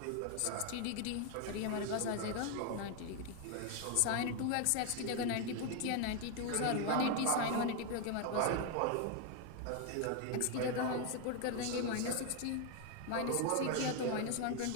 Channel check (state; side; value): different; both; correlation 0.01